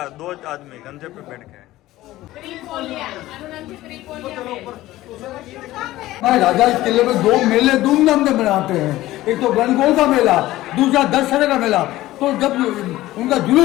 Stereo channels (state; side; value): quieter; right; 16.3 dB